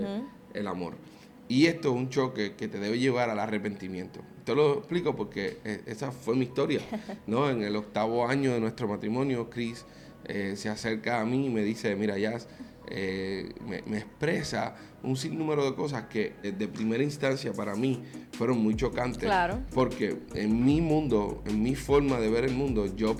el amor. Y esto es un choque que te debe llevar al arrepentimiento. Te lo explico porque esa fue mi historia, ¿no? En el 8º año de nuestro matrimonio, Chris se acerca a mí y me dice, mira, Jazz, me expresa un sinnúmero de cosas que de primera instancia para mí fueron muy chocantes. Claro. Porque en mi mundo, en mi forma de ver el mundo, yo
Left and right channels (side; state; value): both; identical; correlation 1.00